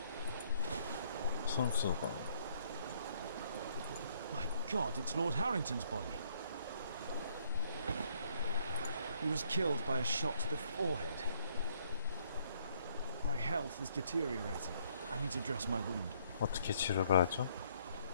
순수가. My God, it's Lord Harrington's body. He was killed by a shot to the forehead. My health is deteriorating. I need to dress my wound. 어떻게 치료를 하죠?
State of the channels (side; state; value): both; inverted; correlation -0.67